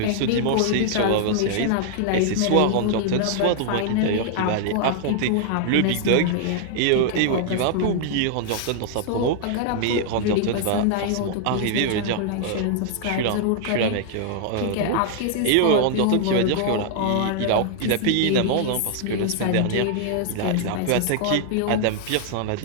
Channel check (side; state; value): both; different; correlation 0.00